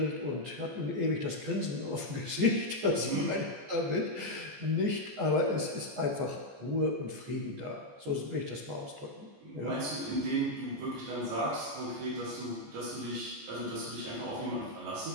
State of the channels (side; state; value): left; late; 14 ms